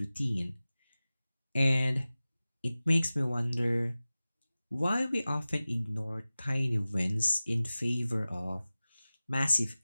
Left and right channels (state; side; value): inverted; both; correlation -0.97